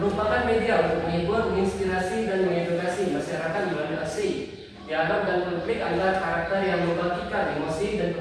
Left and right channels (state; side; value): identical; both; correlation 1.00